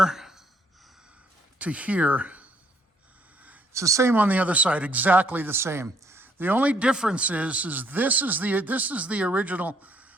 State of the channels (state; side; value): normal; both; correlation 0.67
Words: to here. It's the same on the other side, exactly the same. The only difference is this is the original